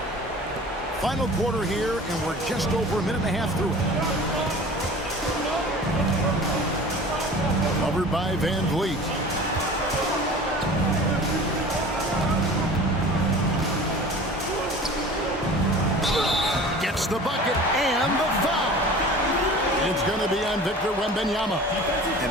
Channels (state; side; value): normal; both; correlation 0.41